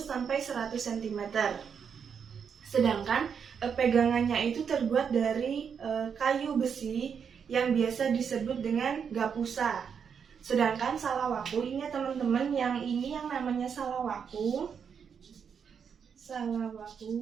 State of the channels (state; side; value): quieter; left; 6.9 dB